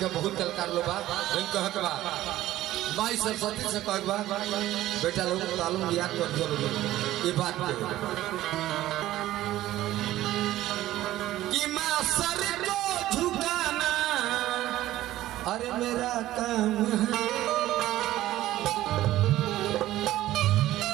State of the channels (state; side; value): quieter; left; 14.8 dB